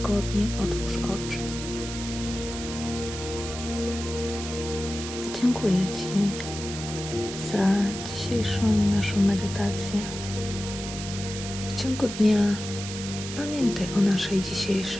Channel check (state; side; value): noise; right; hiss, 9 dB below the sound